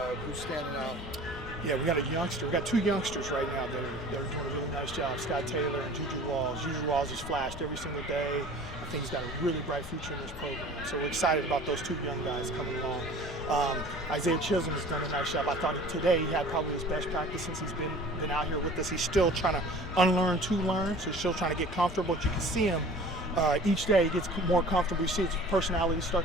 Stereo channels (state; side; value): normal; both; correlation 0.44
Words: Who's standing out? Yeah, we got a youngster. We got two youngsters right now that are doing a really nice job. Scott Taylor and Juju Walls. Juju Walls is flashed every single day. I think he's got a really bright future in this program. So we're excited about those two young guys coming along. Isaiah Chisholm has done a nice job. I thought today he had probably his best practice since he's been out here with us. He's still trying to unlearn to learn, so he's still trying to get comfortable. But you can see him each day he gets more comfortable. You see his personality